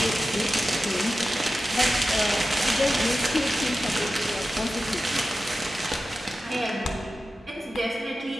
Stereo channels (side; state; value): both; normal; correlation 0.93